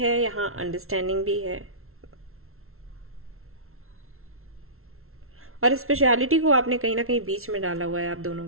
यहाँ अंडरस्टैंडिंग भी है, और स्पेशलिटी को आपने कहीं ना कहीं बीच में डाला हुआ है आप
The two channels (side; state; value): left; late; 0.62 ms